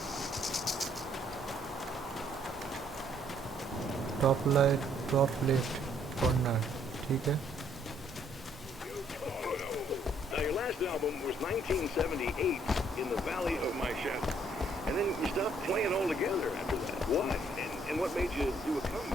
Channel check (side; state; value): both; normal; correlation 0.67